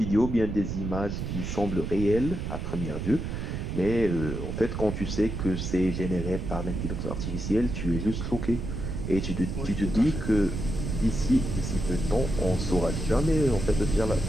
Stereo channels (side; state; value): right; noise; rumble, 4 dB below the sound